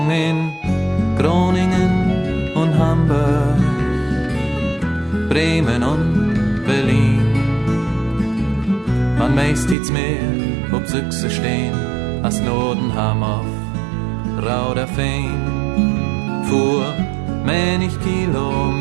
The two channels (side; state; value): left; drops out; at 9.8 s